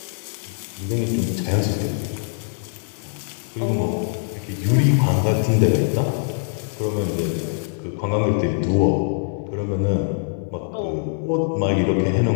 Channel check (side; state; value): right; silent; digital silence